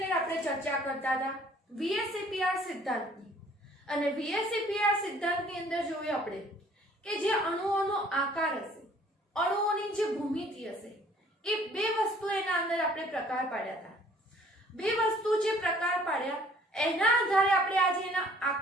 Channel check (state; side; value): normal; both; correlation 0.56